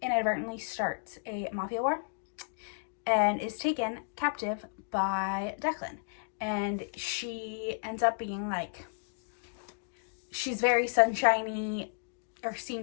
inadvertently starts a mafia war and is taken captive by Declan. And she ends up being she's very sunshiny, or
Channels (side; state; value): right; silent; digital silence